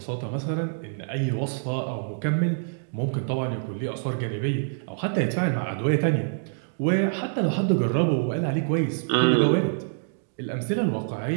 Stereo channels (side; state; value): left; silent; digital silence